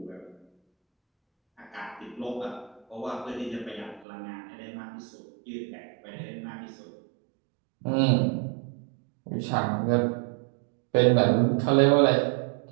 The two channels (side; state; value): left; drops out; at 4.0 s